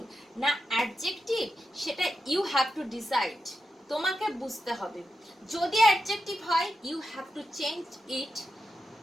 না অ্যাডজেক্টিভ সেটা ইউ হ্যাভ টু ডিসাইড, তোমাকে বুঝতে হবে। যদি অ্যাডজেক্টিভ হয় you have to change it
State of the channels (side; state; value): both; normal; correlation 0.89